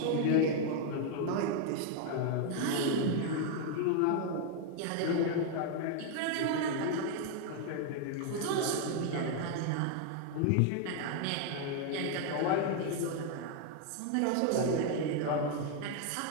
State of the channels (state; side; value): different; both; correlation 0.00